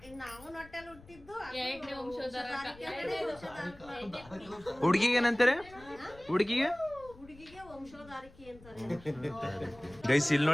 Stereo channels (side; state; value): left; noise; rumble, 22 dB below the sound